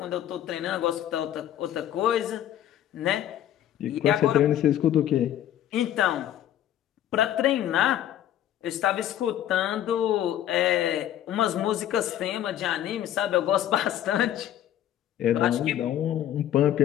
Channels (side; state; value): right; quieter; 11.6 dB